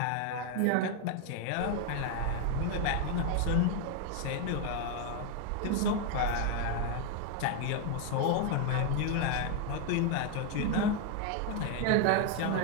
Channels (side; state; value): both; different; correlation 0.01